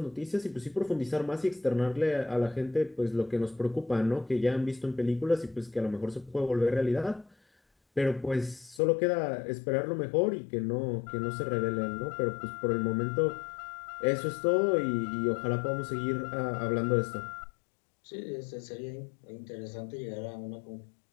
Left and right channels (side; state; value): right; drops out; at 8.8 s